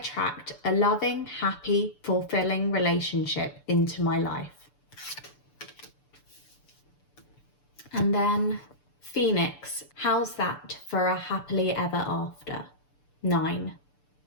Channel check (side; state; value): right; late; 6.8 ms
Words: a loving, happy, fulfilling relationship into my life. And then Phoenix. How's that for a happily ever after? 9.